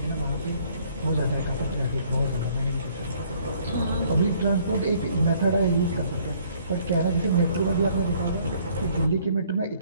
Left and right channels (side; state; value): both; inverted; correlation -0.61